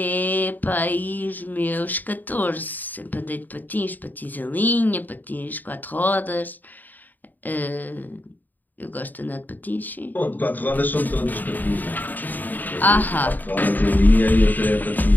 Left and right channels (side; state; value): right; late; 0.087 ms